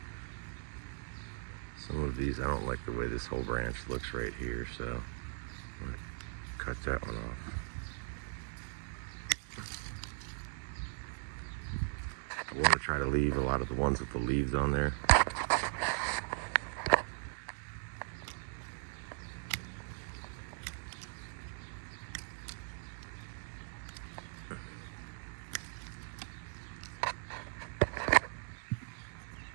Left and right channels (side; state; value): left; silent; digital silence